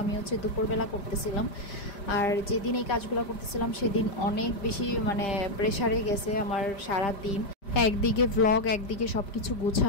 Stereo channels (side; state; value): right; late; 5.0 ms